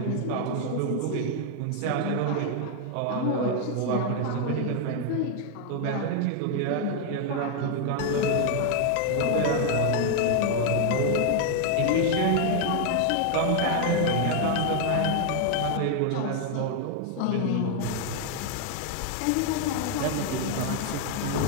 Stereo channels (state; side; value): different; both; correlation 0.00